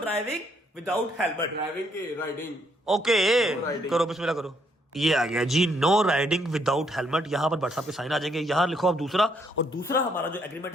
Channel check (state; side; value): normal; both; correlation 0.71